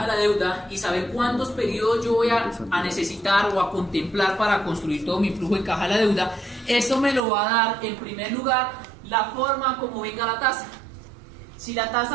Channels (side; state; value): left; drops out; at 7.2 s